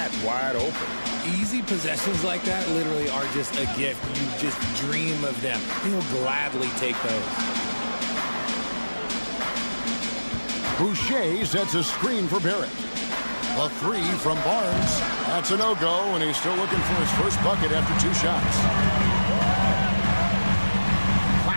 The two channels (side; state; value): both; inverted; correlation -1.00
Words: wide open. Easy possessions like that literally are just a gift. You just dream of them. He'll gladly take those. Boucher sets a screen for Barrett. A three from Barnes. That's a no-go, and he's still looking for his first bucket after 2 shots.